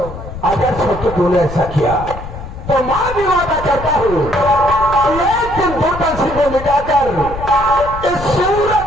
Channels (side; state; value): left; noise; rumble, 10 dB below the sound